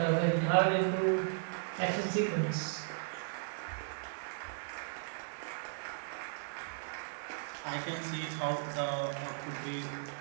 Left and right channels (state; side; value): silent; left; digital silence